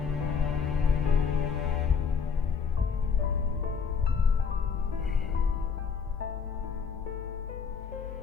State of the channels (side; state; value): right; quieter; 6.1 dB